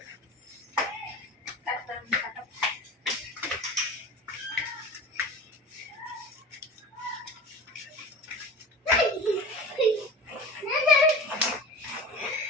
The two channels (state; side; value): normal; both; correlation 0.32